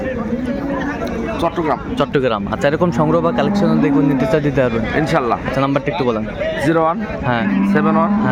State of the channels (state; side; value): identical; both; correlation 1.00